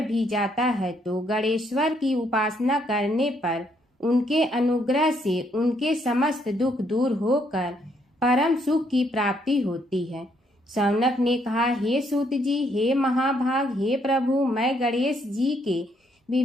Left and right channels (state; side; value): normal; both; correlation 0.71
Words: जाता है तो गणेश्वर की उपासना करने पर उनके अनुग्रह से उनके समस्त दुख दूर होकर परम सुख की प्राप्ति होती है। शौनक ने कहा, हे सूत जी, हे महाभाग, हे प्रभु, मैं गणेश जी के